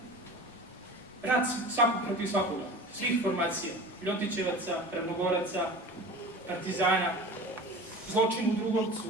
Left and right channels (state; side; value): normal; both; correlation 0.36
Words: rat svakog protiv svakoga, svih formacija, Ljotićevaca, Ravnogoraca, partizana, zločin u Drugovcu.